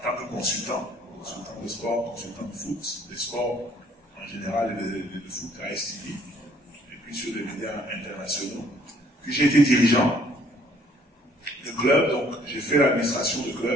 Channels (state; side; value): normal; both; correlation 0.61